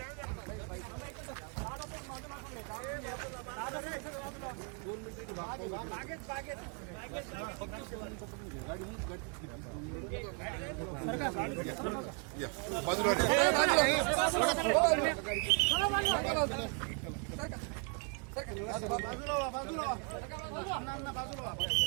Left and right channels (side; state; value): left; quieter; 38.1 dB